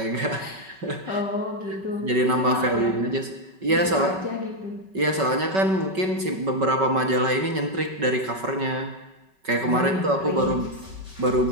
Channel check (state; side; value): late; left; 5.3 ms